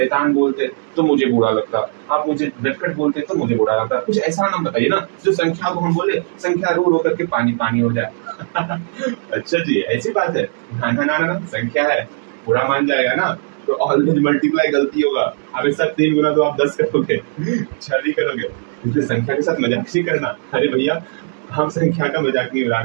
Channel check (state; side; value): silent; left; digital silence